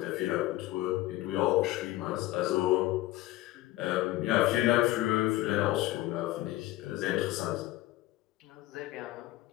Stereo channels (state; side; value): quieter; right; 16.8 dB